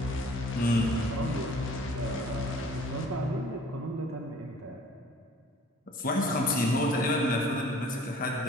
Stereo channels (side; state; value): both; normal; correlation 0.52